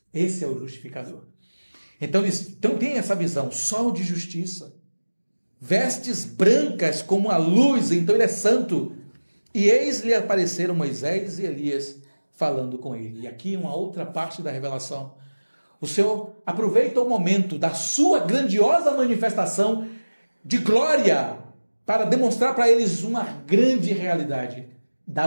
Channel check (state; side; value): inverted; both; correlation -1.00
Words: Esse é o justificador. Então eles têm essa visão, sol de justiça, vestes brancas como a luz, então ele é santo. E eis lhe apareceram Moisés e Elias falando com ele. E aqui uma outra parte da revelação. O Senhor aproveita o momento da sua grandiosa manifestação de glória para demonstrar para eles uma grande realidade